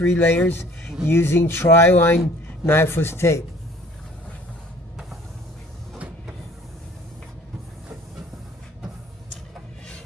layers using tri-line knifeless tape.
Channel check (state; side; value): normal; both; correlation 0.52